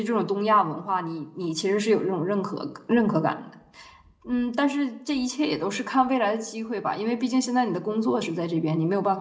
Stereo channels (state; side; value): identical; both; correlation 1.00